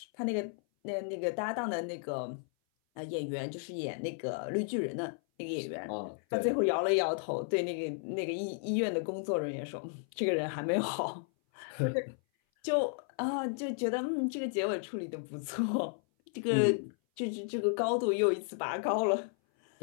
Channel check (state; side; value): silent; right; 55 dB below the other